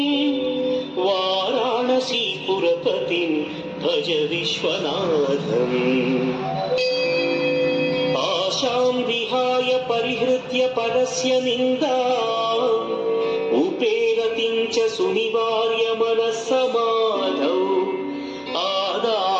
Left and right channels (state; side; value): identical; both; correlation 1.00